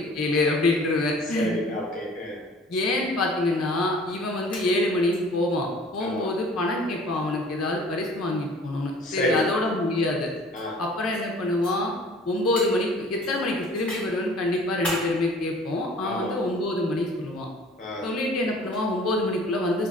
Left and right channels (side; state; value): both; normal; correlation 0.50